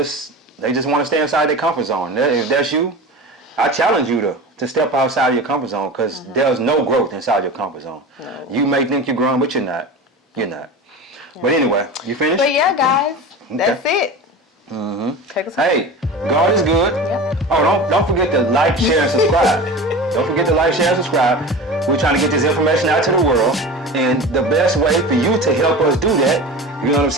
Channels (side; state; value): both; normal; correlation 0.32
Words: just want to stay inside their comfort zone. If that's you, I challenge you to step outside of your comfort zone, because there's no growth inside your comfort zone. No. You may think you're growing, but you're not. You're not. Yeah. But anyway, you finished? But yeah, guys, that's it. Take us home. Hey, God is good. Yep. Oh, don't forget to like, share, and subscribe. Don't forget to like, share, and subscribe. We're trying to get this information out to the world, and the best way for you to help us do that, you know what I'm